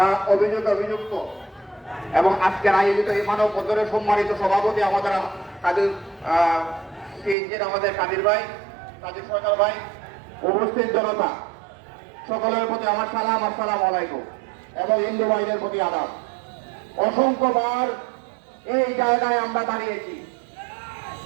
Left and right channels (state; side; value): drops out; left; at 7.4 s